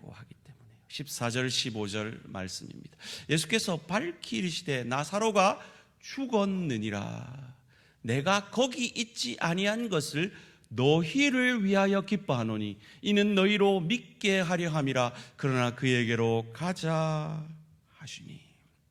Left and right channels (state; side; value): identical; both; correlation 1.00